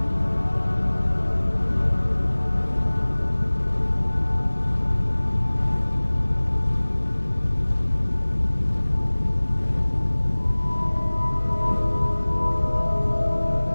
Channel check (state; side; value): inverted; both; correlation -1.00